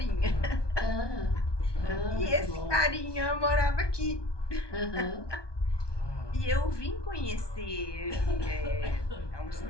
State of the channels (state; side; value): late; right; 1.2 ms